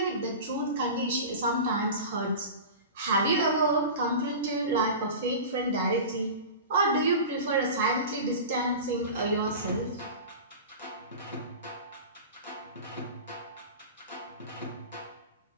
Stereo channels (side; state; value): both; inverted; correlation -0.32